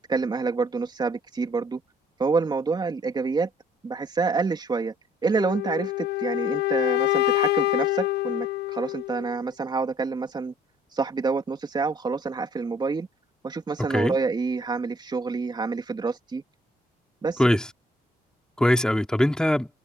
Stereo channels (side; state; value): both; normal; correlation 0.63